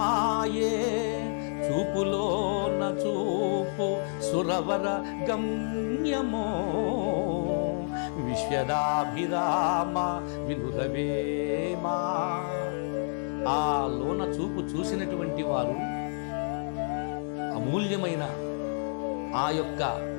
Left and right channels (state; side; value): silent; right; digital silence